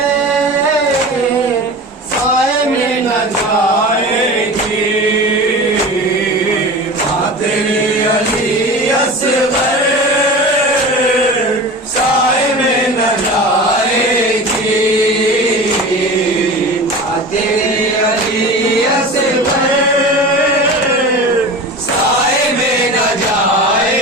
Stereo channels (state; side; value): normal; both; correlation 0.33